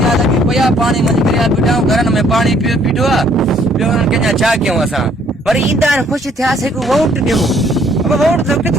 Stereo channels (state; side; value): normal; both; correlation 0.64